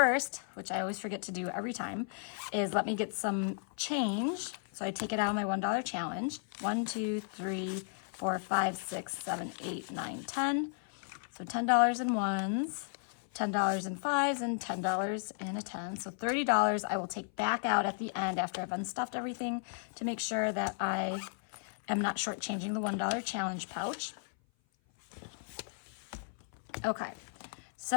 which I always forget to do every time, is let me get some change. So I take it out of my $1 challenge. 1, 2, 3, 4, 5, 6, 7, 8, 9, 10. So $10 in ones, $10 in fives, and $10 in a 10. So $30 I will take back out at the end after I've unstuffed everything to make sure that I am not shortchanging the $1 challenge pouch. Okay,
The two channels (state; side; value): silent; right; 55 dB below the other